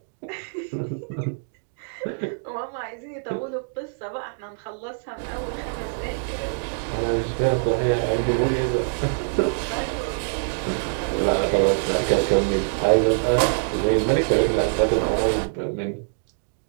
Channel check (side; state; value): left; silent; digital silence